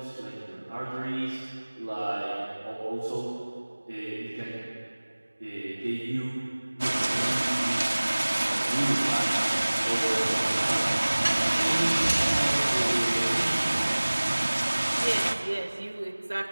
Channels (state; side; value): inverted; both; correlation -1.00